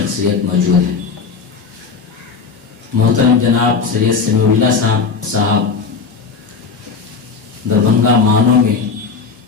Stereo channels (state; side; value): quieter; right; 5.2 dB